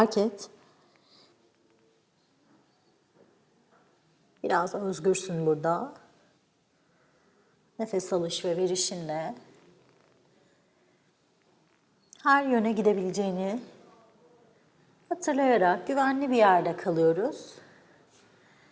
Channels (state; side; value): identical; both; correlation 1.00